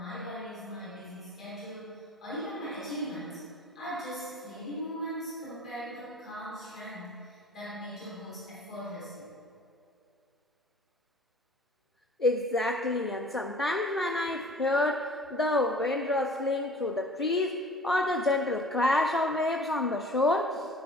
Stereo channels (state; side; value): normal; both; correlation 0.47